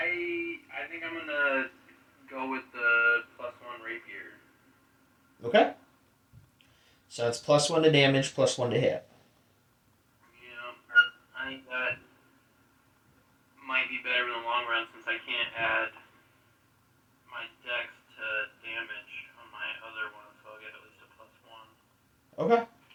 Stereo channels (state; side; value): identical; both; correlation 1.00